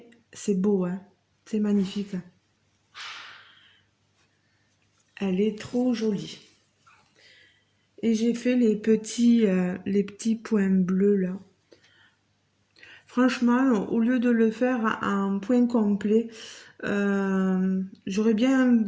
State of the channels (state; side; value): identical; both; correlation 1.00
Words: C'est beau, hein? C'est magnifique. Elle est trop jolie. Et j'ai fait les petits points bleus là. Franchement, au lieu de le faire en point complet, j'aurais bien